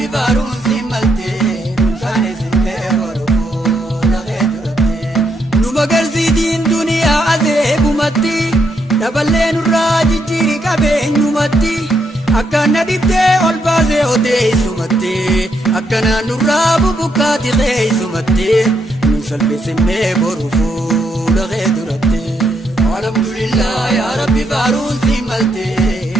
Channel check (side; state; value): both; normal; correlation 0.77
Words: faaruun si malte nunkaanis simmee boru fuula kee duratti nu magarsiitiin duniyaa azeegumatti daballee nurraa jijjiiri qabeenyumatti akkana dhibdee ol baasee odeessumatti akkana nurraa bubukkaati keessumatti nusalmi simmee boru fuula kee duratti alhamdulillah yaa rabbi faaruun si malte